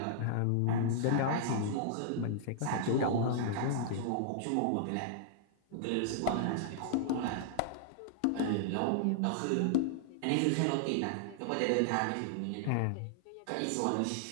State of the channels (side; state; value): both; different; correlation -0.01